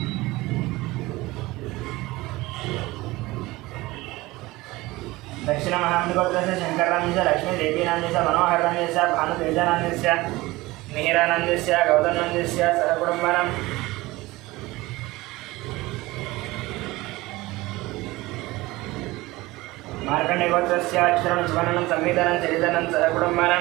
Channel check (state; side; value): quieter; left; 20.0 dB